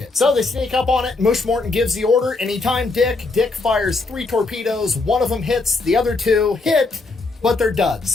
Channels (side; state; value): right; quieter; 3.6 dB